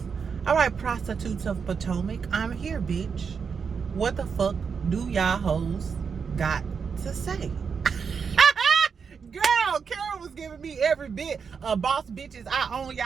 All right, prostitutes of Potomac. I'm here, bitch. What the fuck do y'all hoes got to say? Girl, Karyn was giving me every bit of boss bitches. I own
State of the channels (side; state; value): left; quieter; 6.1 dB